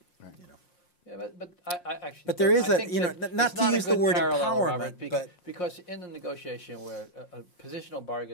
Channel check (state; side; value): late; right; 5.6 ms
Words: Yeah, but I actually. But there is not to use the word empowerment, Robert, but because in the negotiation where positional